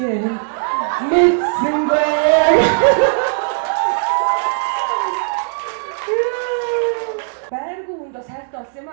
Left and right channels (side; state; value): left; silent; digital silence